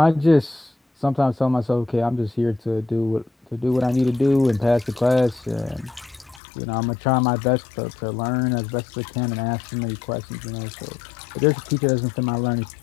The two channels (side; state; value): right; drops out; at 6.4 s